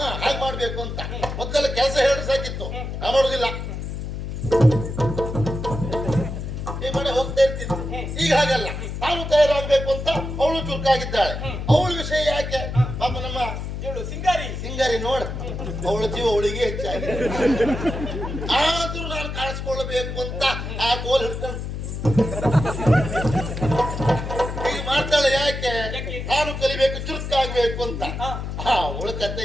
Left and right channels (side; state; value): left; noise; hum, 5 dB below the sound